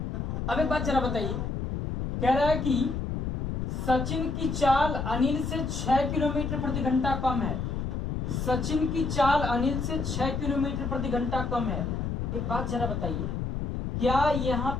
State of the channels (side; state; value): left; noise; rumble, 2 dB below the sound